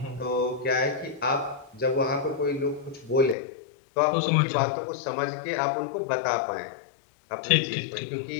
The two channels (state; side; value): drops out; right; at 3.4 s